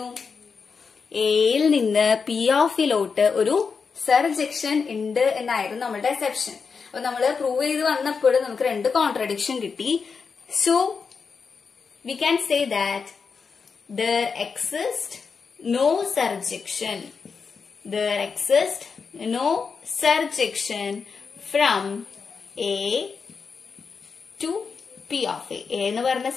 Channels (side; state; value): right; quieter; 5.4 dB